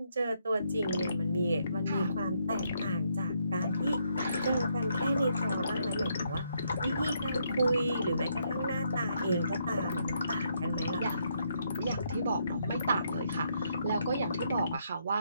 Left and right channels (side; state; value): both; inverted; correlation -0.75